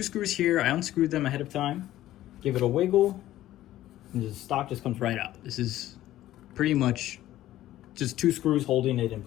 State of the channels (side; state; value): right; quieter; 14.1 dB